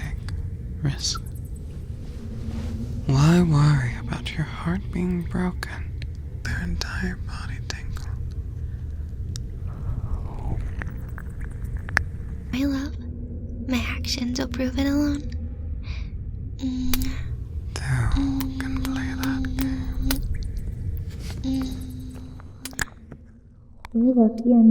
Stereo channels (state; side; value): identical; both; correlation 1.00